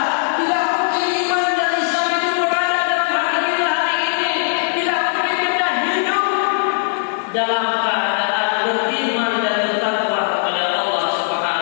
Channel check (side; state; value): right; silent; digital silence